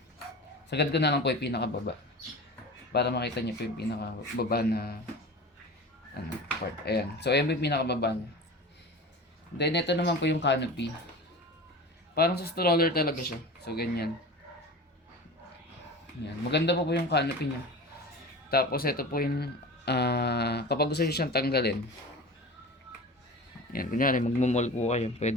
Sagad ko na lang po yung pinakababa. Para makita nyo po yung pinakababa na part. Ayan. So, ayan po yung pinakababa niya. Then, ito naman po yung canopy. Parang sa stroller talaga siya. So, ganyan. Yan. Maganda po yung canopy niya. Tapos, ito po yung kapag gusto nyo siyang tanggalin. Yan. Kunyari, magmumall po kayo.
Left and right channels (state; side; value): normal; both; correlation 0.34